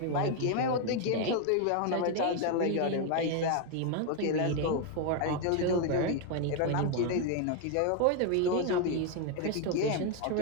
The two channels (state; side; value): different; both; correlation 0.01